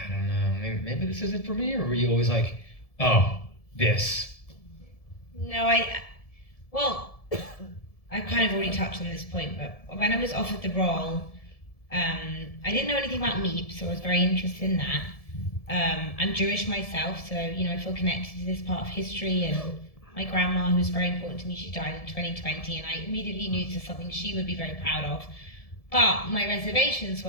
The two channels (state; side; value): late; right; 1.7 ms